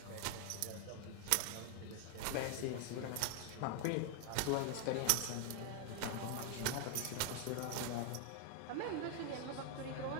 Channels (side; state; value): both; different; correlation 0.00